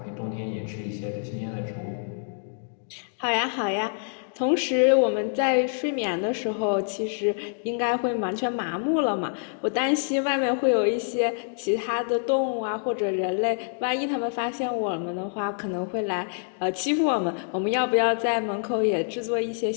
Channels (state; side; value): silent; right; digital silence